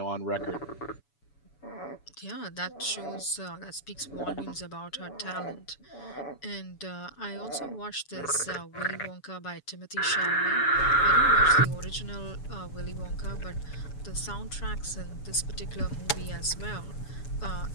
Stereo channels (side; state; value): right; late; 7.0 ms